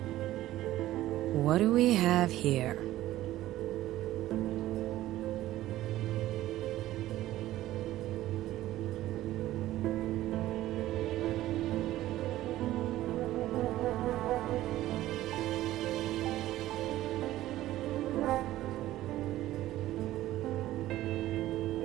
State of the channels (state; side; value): quieter; left; 14.9 dB